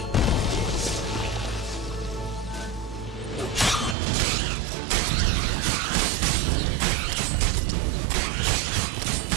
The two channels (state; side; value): drops out; left; at 4.0 s